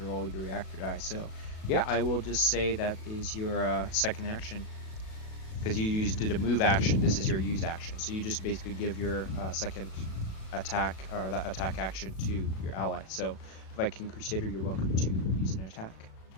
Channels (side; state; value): right; late; 37 ms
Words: roll your reactor die. So, yeah, I will just say that is your second action. Because you did a move action, this is your use action. So you just basically give your second attack or that attack action to your ally. So, Viking Crusader, you're welcome to use an attack.